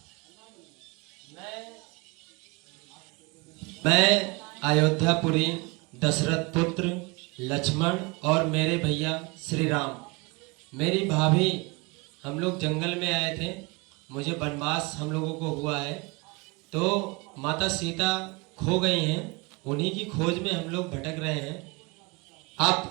मैं अयोध्यापुरी दशरथ पुत्र लक्ष्मण और मेरे भैया श्री राम, मेरी भाभी, हम लोग जंगल में आए थे। मुझे वनवास हम लोगों को हुआ है, तो माता सीता खो गई हैं। उन्हीं की खोज में हम लोग भटक रहे हैं। आप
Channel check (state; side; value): quieter; left; 27.3 dB